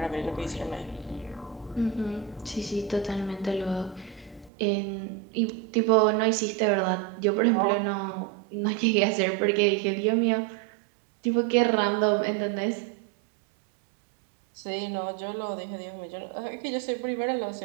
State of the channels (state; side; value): drops out; left; at 4.5 s